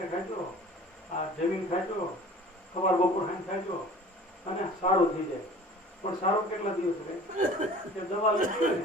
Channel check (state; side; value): normal; both; correlation 0.45